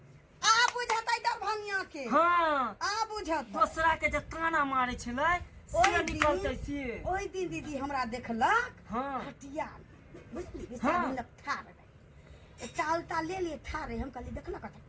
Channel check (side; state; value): both; identical; correlation 1.00